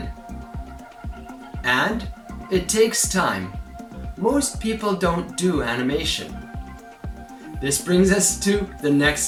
and it takes time, most people don't do animation. This brings us to the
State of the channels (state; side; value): identical; both; correlation 1.00